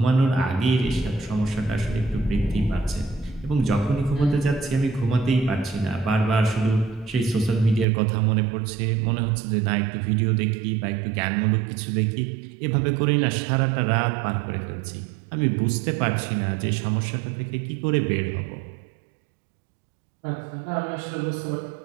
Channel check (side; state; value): left; drops out; at 7.9 s